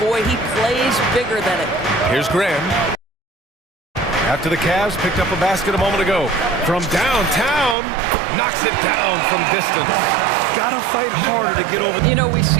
he plays bigger than it. Here's Graham. After the Cavs picked up a basket a moment ago. From downtown, knocks it down from distance. Gotta fight harder to get over. You know, we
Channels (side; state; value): left; drops out; at 7.8 s